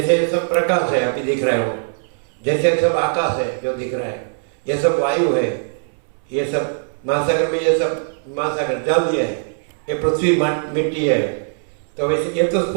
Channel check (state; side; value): silent; left; 65 dB below the other